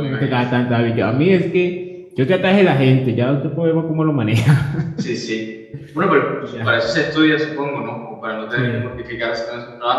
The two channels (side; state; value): both; identical; correlation 1.00